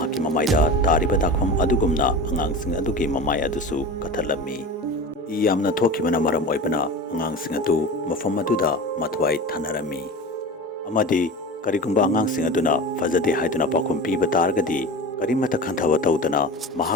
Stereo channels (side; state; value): both; normal; correlation 0.31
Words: ममाइदा तारिबा दाखफम अदुगुमना अंगांग सिंग अदुगी ममाइ अदुसु कथलमी इ यामना थोखिबना मरम ओइबना अंगांग सिंग अदु मफम अदुदा मथवाइ थानरमी अमादी करिगुंबा अंगांग सिंग अदुना फजदे हाइदुना पाखुम पीबा तारगदी करिमता खंथवा तौदना